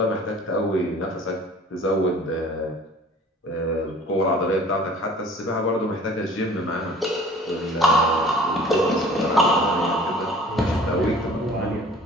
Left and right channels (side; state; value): both; normal; correlation 0.48